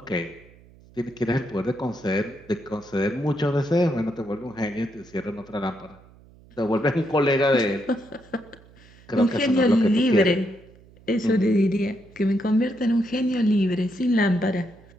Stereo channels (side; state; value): right; noise; hum, 25 dB below the sound